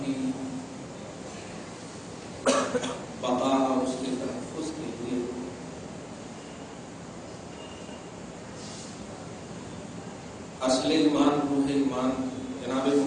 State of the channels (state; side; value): identical; both; correlation 1.00